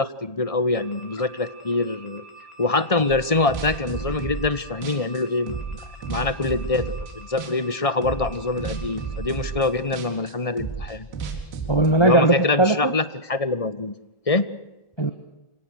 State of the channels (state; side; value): late; right; 1.6 ms